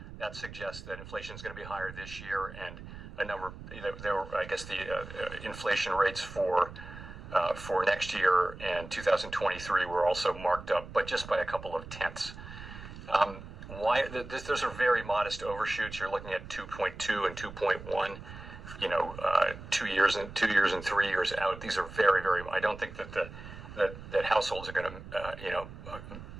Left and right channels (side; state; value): right; noise; rumble, 13 dB below the sound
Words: that suggests that inflation is going to be higher this year, and I guess the inflation rates for next year and 2023 were also marked up, but just by a couple of tenths. Those are very modest overshoots. You're looking at 2.2 and 2.1. 2 years and 3 years out. These are very, very. I don't think that households are going to